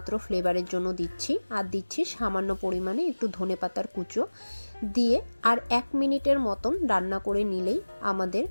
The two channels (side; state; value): both; inverted; correlation -1.00